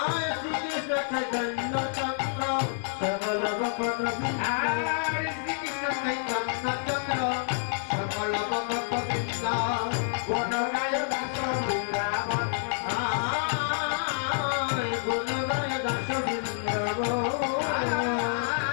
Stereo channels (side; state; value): right; silent; 57 dB below the other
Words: শ্রীকৃষ্ণ চৈতন্য চন্দ্র সকল ভক্ত বৃন্দ আরে শ্রীকৃষ্ণ চৈতন্য চন্দ্র সকল ভক্ত বৃন্দ কোন গায় দাস বৃন্দাবন আয় গুণ গায় দাস বৃন্দাবন